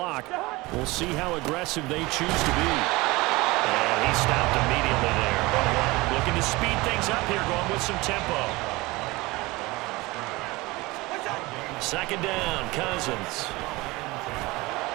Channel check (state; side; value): quieter; left; 21.9 dB